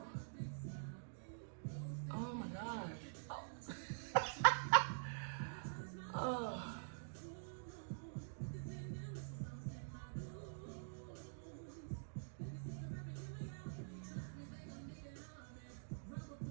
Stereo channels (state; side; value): silent; left; digital silence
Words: Oh my gosh. Oh. Oh.